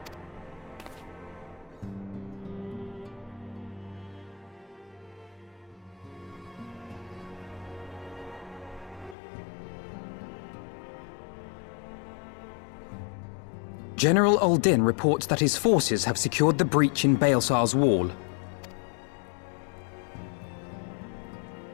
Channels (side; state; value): right; drops out; at 9.2 s